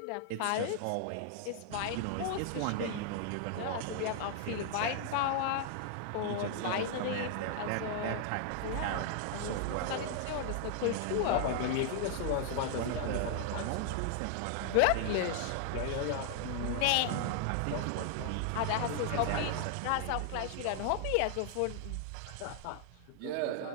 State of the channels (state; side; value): different; both; correlation 0.00